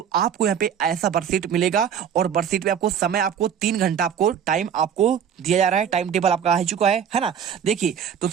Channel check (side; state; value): left; quieter; 8.2 dB